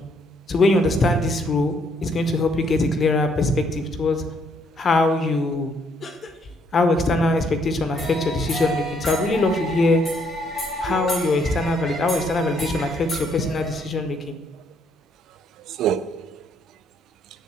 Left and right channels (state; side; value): normal; both; correlation 0.70